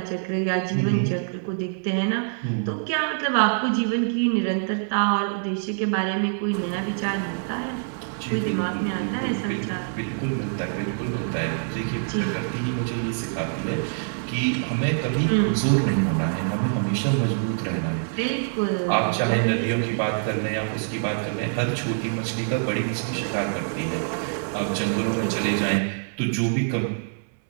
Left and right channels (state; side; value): silent; left; digital silence